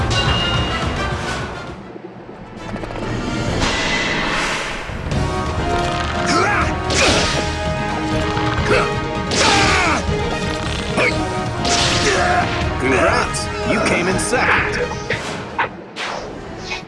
Congrats! You came in second.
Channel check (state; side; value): identical; both; correlation 1.00